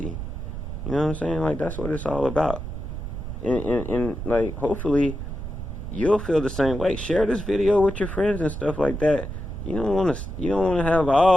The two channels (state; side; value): noise; right; rumble, 7 dB below the sound